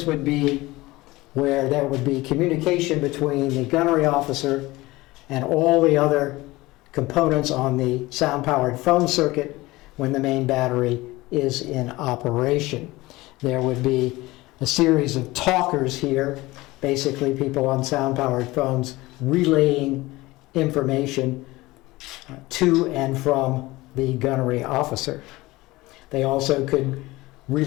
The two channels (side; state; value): right; quieter; 19.9 dB